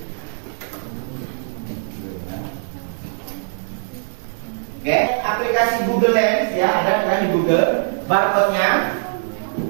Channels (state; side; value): silent; left; 58 dB below the other